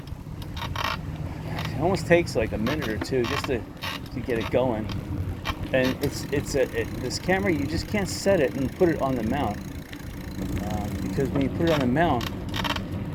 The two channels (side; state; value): both; identical; correlation 1.00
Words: It almost takes like a minute or two just to get it going. And this camera, you just can't set it and put it on the mount, because when you put it on the mount,